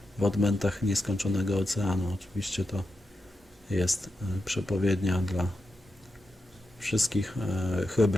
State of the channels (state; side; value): normal; both; correlation 0.88